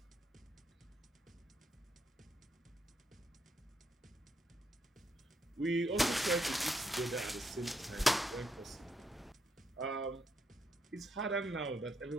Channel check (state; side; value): normal; both; correlation 0.78